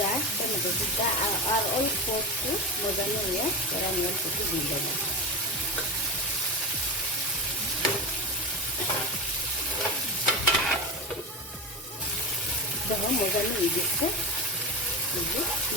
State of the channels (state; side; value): normal; both; correlation 0.21